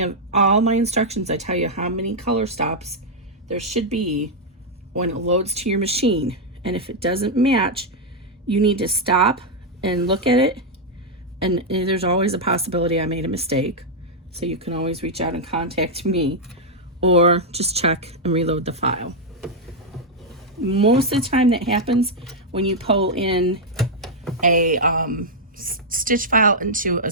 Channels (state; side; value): normal; both; correlation -0.03